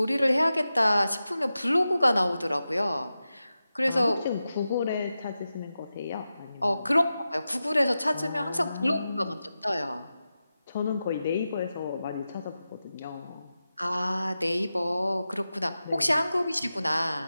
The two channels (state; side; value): inverted; both; correlation -0.92